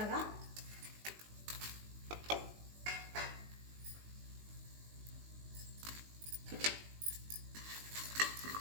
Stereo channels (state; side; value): late; left; 19 ms